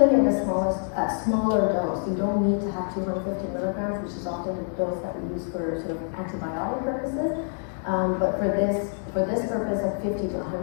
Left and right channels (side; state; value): right; silent; 61 dB below the other